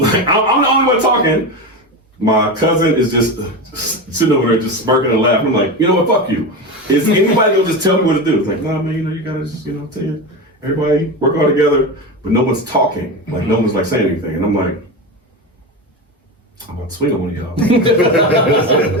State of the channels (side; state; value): both; normal; correlation 0.21